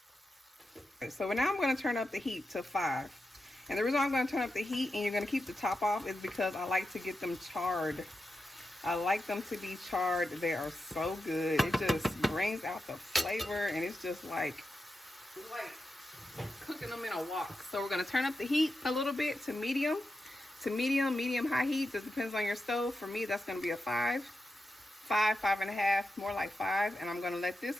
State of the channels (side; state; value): both; normal; correlation 0.89